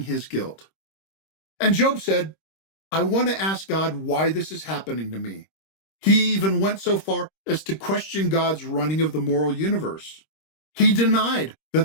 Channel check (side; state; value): right; late; 26 ms